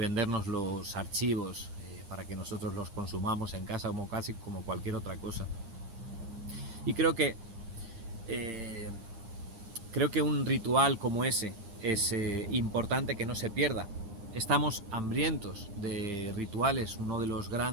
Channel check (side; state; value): left; late; 9.8 ms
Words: los archivos para que nosotros los consumamos en casa casi como cualquier otra cosa. Y creo que un ritual como ese es importante que no se pierda. Estamos hambrientos de rituales. Uno de los